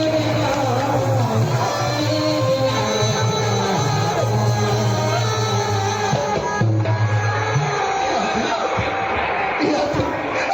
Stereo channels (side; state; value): both; identical; correlation 1.00